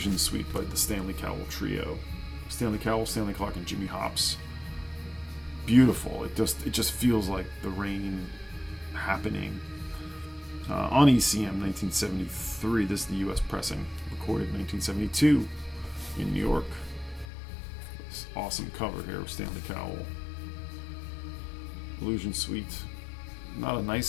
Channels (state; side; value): drops out; right; at 17.3 s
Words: Suite by the Stanley Cowell Trio. Stanley Cowell, Stanley Clarke, and Jimmy Hops. Beautiful. It just feels like the rain happening. On ECM 1973, this is the US pressing. Recorded 1972 in New York. This awesome cover here of Stanley Cowell. Illusion Suite. Not a